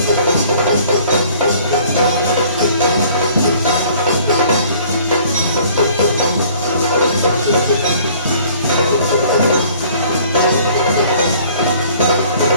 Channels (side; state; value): both; inverted; correlation -0.55